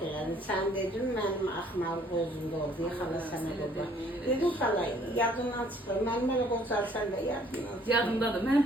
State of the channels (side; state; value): both; normal; correlation 0.60